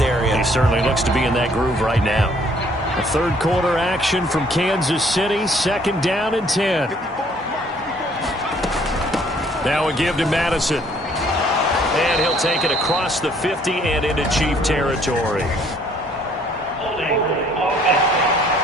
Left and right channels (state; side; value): normal; both; correlation 0.61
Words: area. He certainly looks to be in that groove right now. A third quarter action from Kansas City. Second down and 10. Now a give to Madison. And he'll take it across the 50 and into Chief territory.